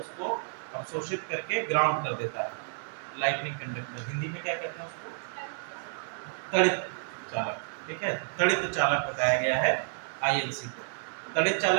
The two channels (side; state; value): left; silent; 58 dB below the other